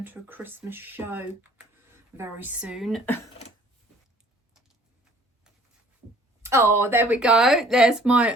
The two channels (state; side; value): normal; both; correlation 0.53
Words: to a Christmas show very soon. Oh, there we go. There's my